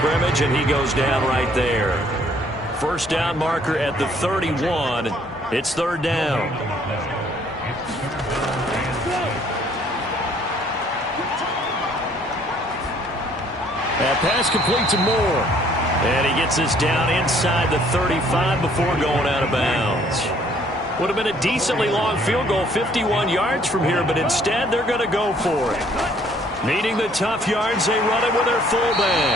and he goes down right there. First down marker at the 31. It's 3rd down. That pass complete to Moore. And he gets this down inside the 35 before going out of bounds. Would have been a decently long field goal, 51 yards from here, but instead they're going to go for it. Needing the tough yards, they run it with their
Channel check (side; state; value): both; normal; correlation 0.61